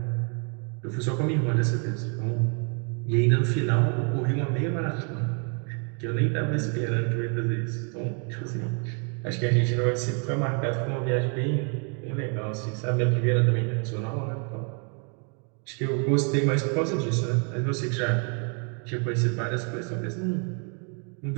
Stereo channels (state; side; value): quieter; left; 39.5 dB